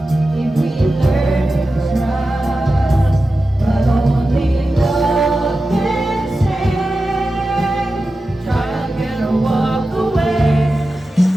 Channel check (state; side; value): normal; both; correlation 0.93